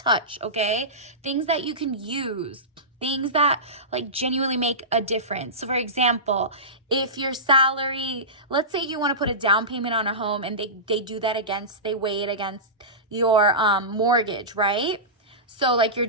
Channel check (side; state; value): both; normal; correlation -0.19